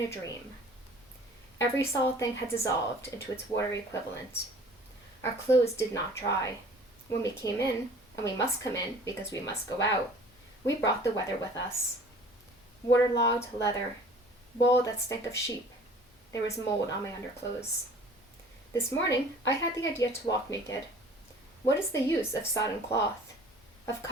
a dream. Every solid thing had dissolved into its watery equivalent. Our clothes did not dry. When we came in, and we must come in because we must go out, we brought the weather with us. Waterlogged leather, wool that stank of sheep. There was mold on my underclothes. This morning, I had the idea to walk naked. What is the use of sodden cloth, of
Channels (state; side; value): normal; both; correlation 0.48